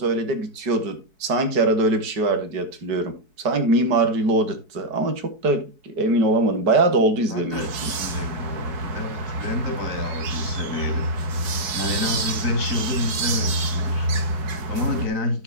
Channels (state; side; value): late; left; 4.6 ms